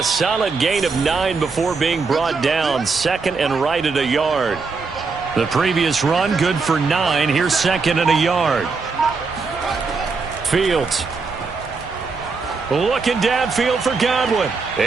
solid gain of 9 before being brought down. 2nd and right at a yard. The previous run, good for 9. Here's 2nd and a yard. Fields. Looking downfield for Godwin.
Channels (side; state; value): left; quieter; 4.5 dB